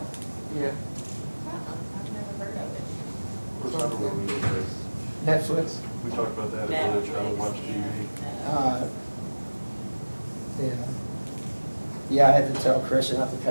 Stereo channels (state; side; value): inverted; both; correlation -1.00